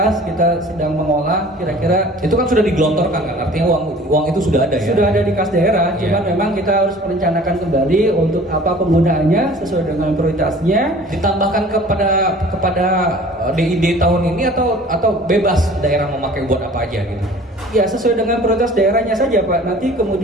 kita sedang mengolah kira-kira. Itu kan sudah digelontorkan kan, artinya uang itu sudah ada ya? Sudah ada di kas daerah, cuman memang kita harus merencanakan kembali untuk apa penggunaannya sesuai dengan prioritasnya. Ditambahkan kepada DID tahun ini atau bebas daerah memakai buat apa aja gitu? Ya sesuai dengan prioritas daerahnya saja Pak. Nanti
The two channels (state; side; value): normal; both; correlation 0.47